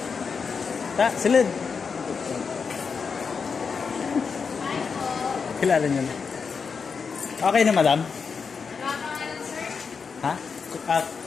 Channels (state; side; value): quieter; right; 5.6 dB